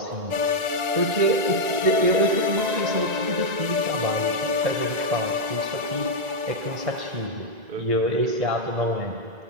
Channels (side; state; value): left; late; 1.9 ms